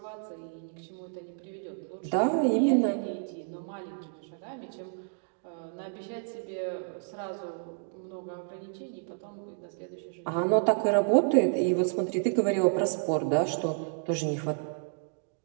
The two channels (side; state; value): left; silent; digital silence